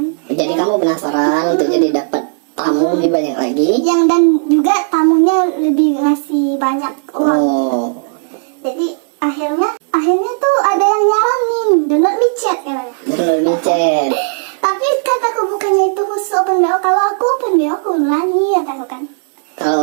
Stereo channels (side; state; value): left; silent; digital silence